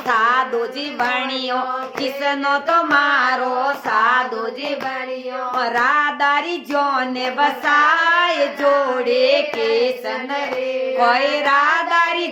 जी बणियो किसनो तो मारो साधु जी बणियो राधारी जोने बसाए जोड़े केसन कोई राधारी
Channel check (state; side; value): identical; both; correlation 1.00